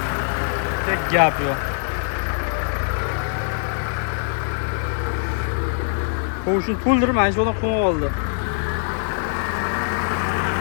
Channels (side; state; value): right; silent; digital silence